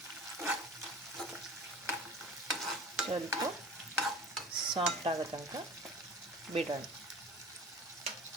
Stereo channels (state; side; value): normal; both; correlation 0.41